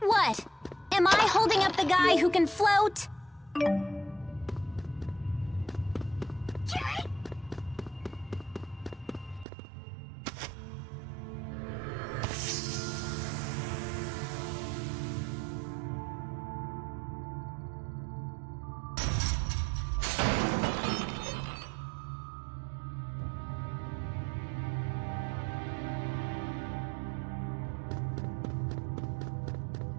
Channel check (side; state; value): left; drops out; at 9.5 s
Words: Am I holding up the guy who can float?